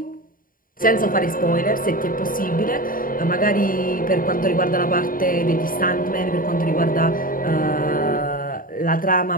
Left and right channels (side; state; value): right; late; 0.41 ms